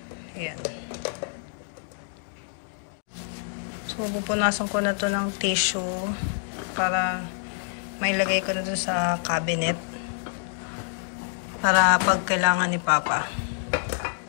Ayan. So, pupunasan ko na to ng tissue para mailagay ko na to sa cabinet. Para pag kailangan ni Papa.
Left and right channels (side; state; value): right; silent; digital silence